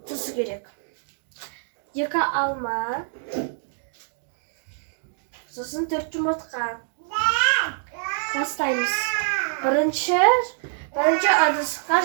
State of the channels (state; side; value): silent; left; digital silence